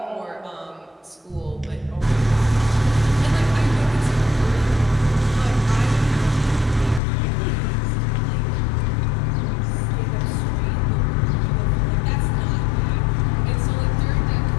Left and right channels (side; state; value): right; drops out; at 7.0 s